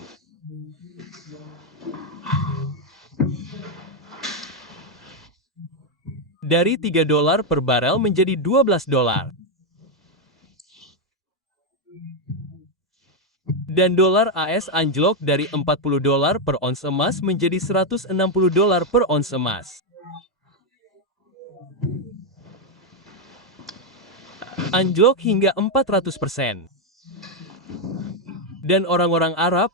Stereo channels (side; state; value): both; normal; correlation 0.03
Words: Dari 3 dolar per barel menjadi 12 dolar. Dan dolar AS anjlok dari 40 dolar per ons emas menjadi 160 dolar per ons emas. Anjlok hingga 400%. Dan orang-orang Arab